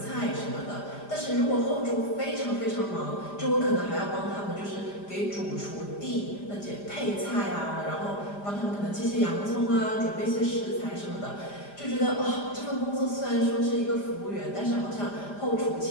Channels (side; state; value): right; late; 5.0 ms